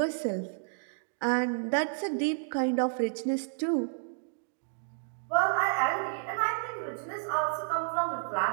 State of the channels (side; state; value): left; silent; digital silence